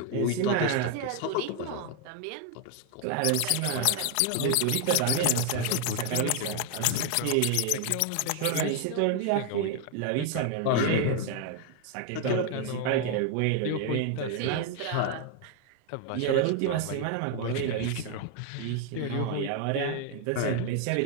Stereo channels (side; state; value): both; different; correlation 0.01